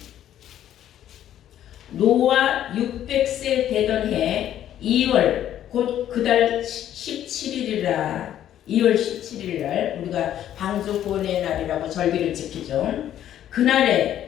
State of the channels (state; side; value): quieter; right; 11.3 dB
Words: 노아 600세 되던 해 2월 곧 그달 17일이라 2월 17일날 우리가 방주 구원의 날이라고 절기를 지키죠.